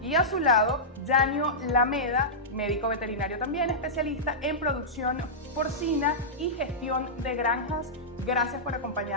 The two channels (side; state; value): both; normal; correlation -0.13